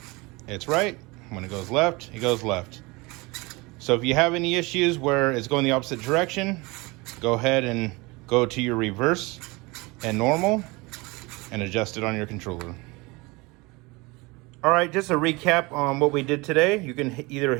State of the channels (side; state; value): left; quieter; 24.7 dB